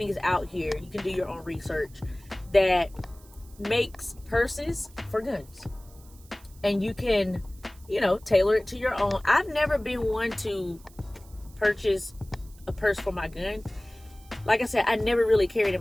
out here. You can do your own research that makes purses for guns, and you can tailor it to your own. I've never been one to purchase a purse for my gun. Like I said, I never really carried in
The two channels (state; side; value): noise; right; hiss, 25 dB below the sound